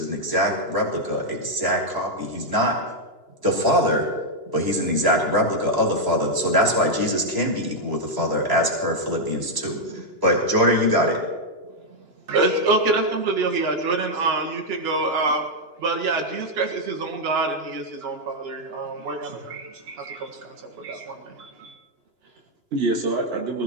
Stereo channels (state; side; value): late; left; 2.9 ms